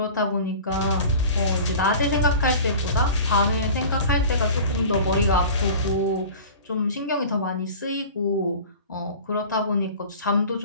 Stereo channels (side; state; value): both; inverted; correlation -0.39